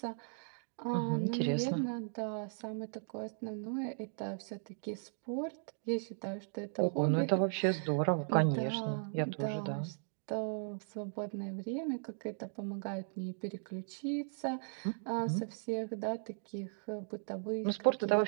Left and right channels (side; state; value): left; silent; digital silence